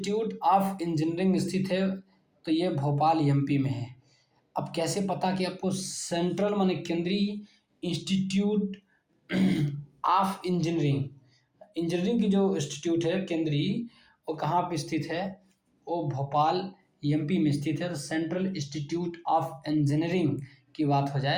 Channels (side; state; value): both; identical; correlation 1.00